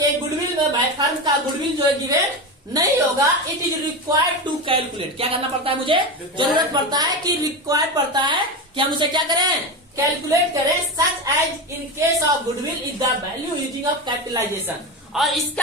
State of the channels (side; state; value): both; normal; correlation 0.19